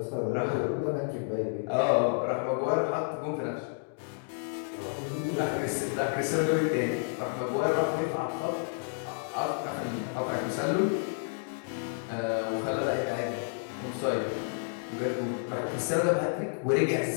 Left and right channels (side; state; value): right; silent; digital silence